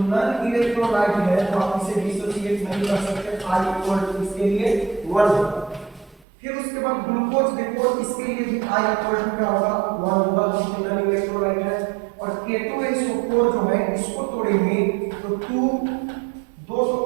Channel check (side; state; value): left; drops out; at 6.2 s